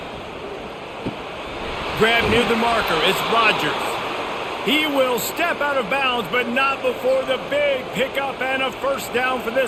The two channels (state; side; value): identical; both; correlation 1.00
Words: Grab near the marker. It's Rodgers. He will step out of bounds, but not before the big pickup and a first down for